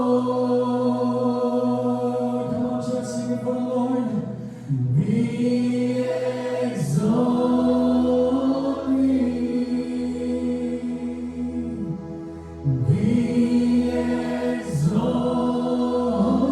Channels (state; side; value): identical; both; correlation 1.00